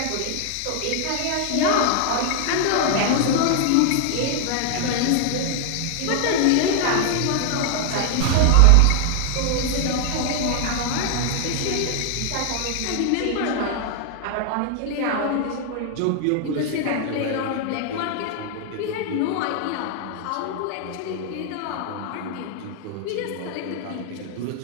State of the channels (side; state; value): both; different; correlation 0.00